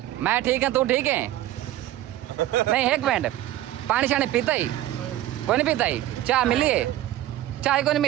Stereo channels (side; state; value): left; quieter; 14.2 dB